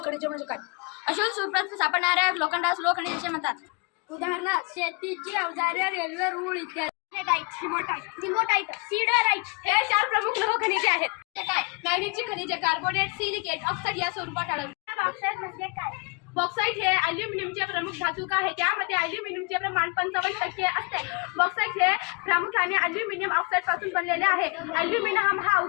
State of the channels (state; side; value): quieter; right; 30.5 dB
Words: खनिजे म्हणजे काय? अशोध सूत्रात सापडणाऱ्या लोखंडास लोह खनिजे म्हणतात. उदाहरणार्थ शेतीची अवजारे, रेल्वे रूळ इत्यादी. सिल्वरटाइट, सीडराइट हे 4 प्रमुख लोह खनिजे आहेत. हे काय? मॅग्नीजची खनिजे कार्बोनेट, सिलिकेट, ऑक्साईड या स्वरूपात आढळतात. बॉक्साइट म्हणजे काय? बॉक्साईट हे अल्युमिनियमचे प्रमुख धातुक आहे. त्यामध्ये अल्युमिनियमचे प्रमाण 55% असते. बॉक्साईट हे प्रामुख्याने अल्युमिनियम ऑक्साईड पासून बनलेले आहे. अल्युमिनियम हा